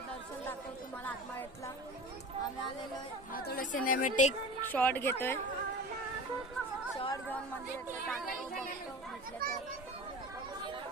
दर्शन दाखवतो तुम्हाला आत्माळ्यातला. आम्ही आलेलो आहे. हा थोडं सिनेमॅटिक शॉट घेतोय. शॉट घेऊन मंदिरात बघतो म्हटलं तर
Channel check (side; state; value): both; normal; correlation 0.35